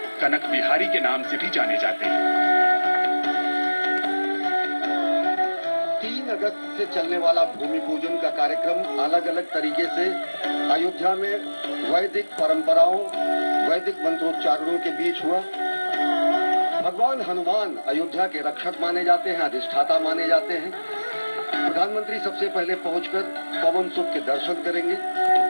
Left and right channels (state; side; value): inverted; both; correlation -1.00